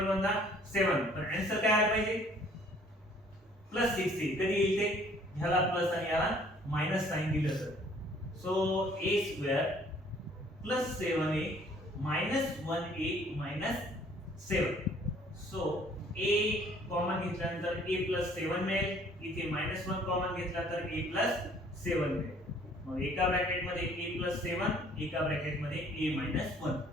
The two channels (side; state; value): both; normal; correlation 0.58